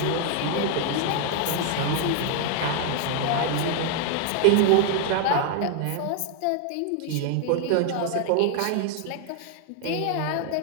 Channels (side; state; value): both; different; correlation 0.00